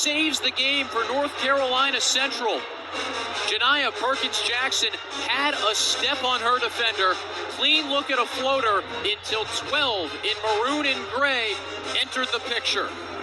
the game for North Carolina Central. Janiyah Perkins-Jackson had a step on her defender. Clean look at a floater until 12 in maroon and gray entered the picture.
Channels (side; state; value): both; identical; correlation 1.00